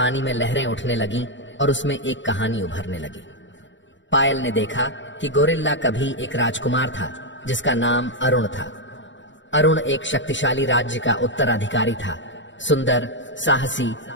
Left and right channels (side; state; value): right; late; 0.54 ms